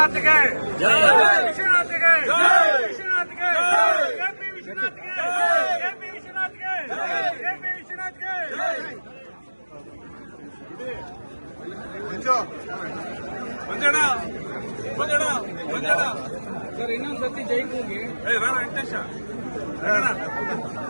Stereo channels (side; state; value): both; inverted; correlation -1.00